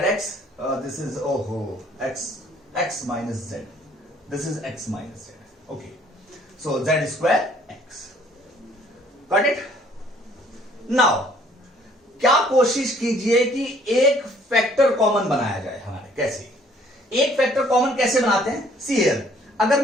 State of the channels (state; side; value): normal; both; correlation 0.60